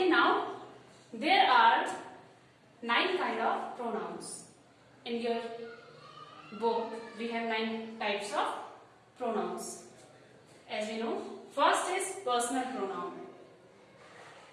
now there are 9 kind of pronouns. In your book we have 9 types of pronouns. As we know, first is personal pronoun,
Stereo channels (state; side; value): identical; both; correlation 1.00